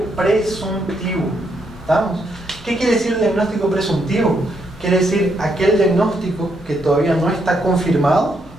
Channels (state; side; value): normal; both; correlation 0.77